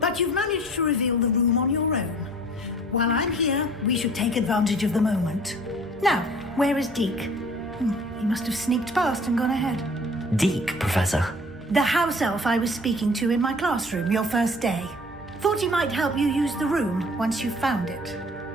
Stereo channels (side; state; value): both; normal; correlation 0.50